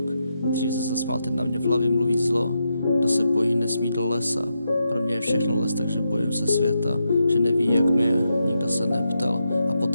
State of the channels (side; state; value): both; inverted; correlation -0.85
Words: Dřív se zasmál, teď na mě v hlavě mluví zlo. Kdo se bojí, nesmí do lesa. Pro mě je všechno les, takže bojím se světa. Že neví, jak mi je, nikdo se neptal. A